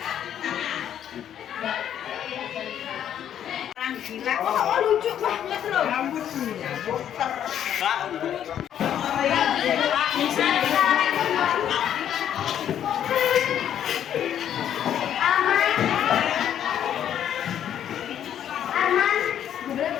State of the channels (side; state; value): right; quieter; 10.0 dB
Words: oh, lucu banget loh. Rambutnya puter.